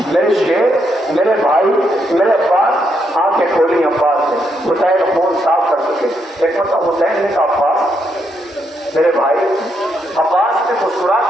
میرے شیر، میرے بھائی، میرے عباس، آنکھیں کھولی عباس نے، حسین خون صاف کر چکے. ایک مرتبہ حسین نے کہا عباس میرے بھائی. عباس نے مسکرا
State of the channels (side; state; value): both; normal; correlation 0.78